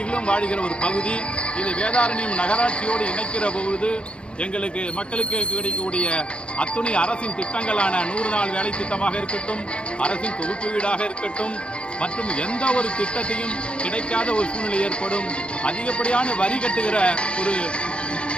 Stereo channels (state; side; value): late; right; 0.057 ms